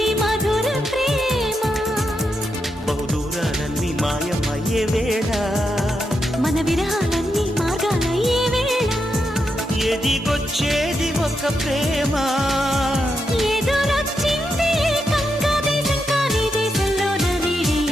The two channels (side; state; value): both; normal; correlation 0.84